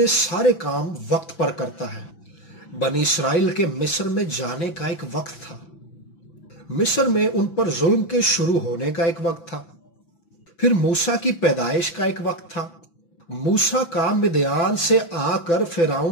سارے کام وقت پر کرتا ہے۔ بنی اسرائیل کے مصر میں جانے کا ایک وقت تھا۔ مصر میں ان پر ظلم کے شروع ہونے کا ایک وقت تھا۔ پھر موسیٰ کی پیدائش کا ایک وقت تھا۔ موسیٰ کا مدیان سے آ کر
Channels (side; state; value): right; late; 5.9 ms